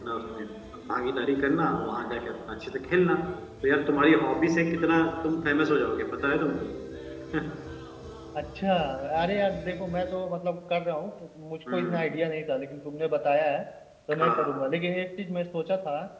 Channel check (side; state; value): both; identical; correlation 1.00